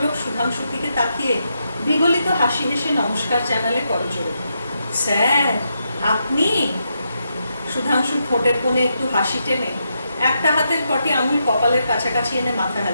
সুধাংশুর দিকে তাকিয়ে বিগলিত হাসি হেসে নমস্কার জানালে করজোড়ে। স্যার, আপনি? সুধাংশু ঠোঁটের কোণে একটু হাসি টেনে একটা হাতের কটি আঙুল কপালের কাছাকাছি এনে মাথা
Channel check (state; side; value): inverted; both; correlation -0.82